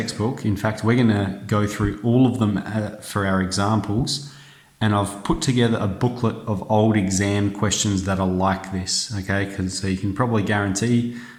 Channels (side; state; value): both; identical; correlation 1.00